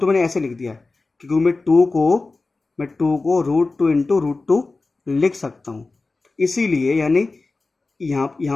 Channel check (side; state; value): right; quieter; 3.6 dB